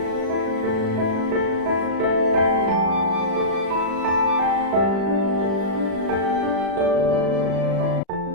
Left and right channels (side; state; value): left; late; 36 ms